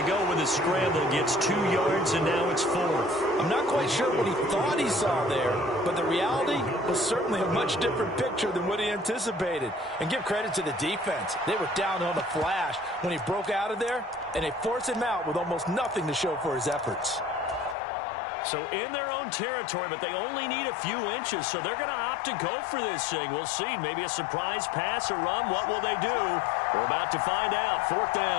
go with a scramble, gets 2 yards, and now it's 4th. I'm not quite sure what he thought he saw there, but the reality was certainly a much different picture than what he anticipated. And give credit to the defense. They were down on the flash when he broke out of there, and they forced him out with almost nothing to show for his efforts. So in their own territory, but they only need a few inches, so they're going to opt to go for this thing. We'll see. Maybe a surprise pass or run. What will they do? We're about to find out. 4th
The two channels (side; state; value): right; drops out; at 17.8 s